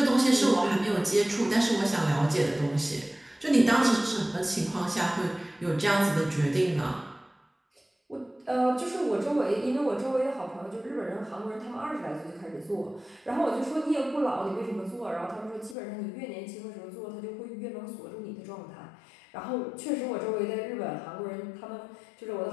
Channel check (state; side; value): drops out; right; at 15.8 s